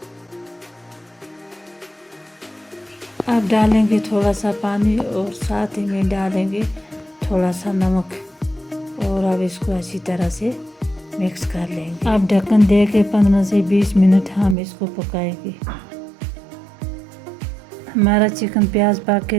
अब डालेंगे थोड़ा सा पानी और साथ ही में डालेंगे थोड़ा सा नमक और अब इसको अच्छी तरह से मिक्स कर लेंगे। अब ढक्कन दे के 15 से 20 मिनट हम इसको पकाएंगे। हमारा चिकन प्याज पक के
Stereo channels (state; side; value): drops out; left; at 14.6 s